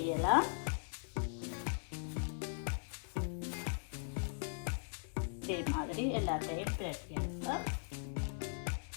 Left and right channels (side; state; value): right; silent; 51 dB below the other